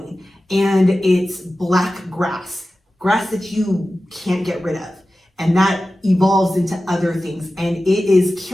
And it's black grass that you can't get rid of. And that evolves into other things. And it is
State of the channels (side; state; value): both; normal; correlation 0.95